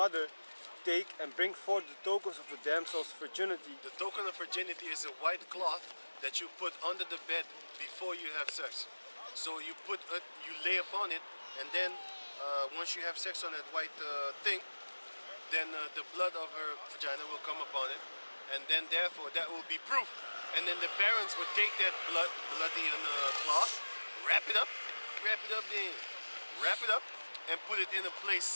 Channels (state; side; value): inverted; both; correlation -1.00